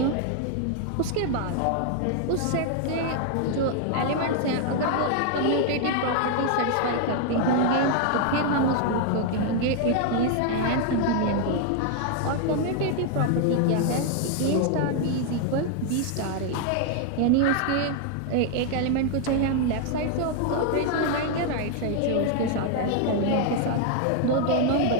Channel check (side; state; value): both; different; correlation 0.00